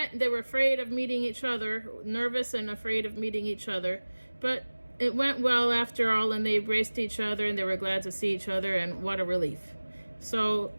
they were afraid of meeting each other, nervous and afraid of meeting each other. But it went well after all, and they embraced each other, and they were glad to see each other, and what a relief. So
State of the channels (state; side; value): inverted; both; correlation -1.00